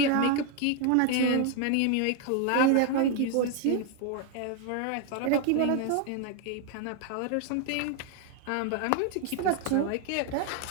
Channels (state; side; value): different; both; correlation 0.01